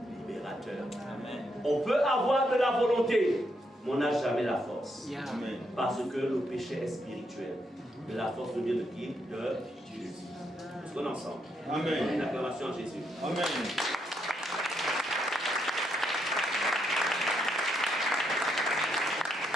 libérateur. Amen. On peut avoir de la volonté, mais on n'a jamais la force. Yeah. Amen. Parce que le péché est spirituel. Mais la force vient de qui? De Jésus. Nous sommes ensemble. Amen. Une acclamation à Jésus. Amen.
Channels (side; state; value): both; normal; correlation 0.78